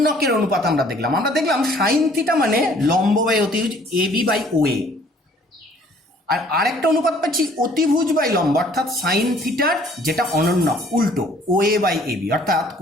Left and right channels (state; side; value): normal; both; correlation 0.58